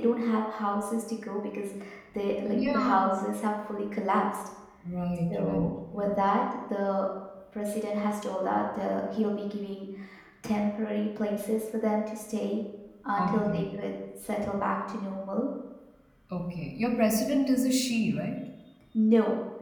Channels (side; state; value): both; identical; correlation 1.00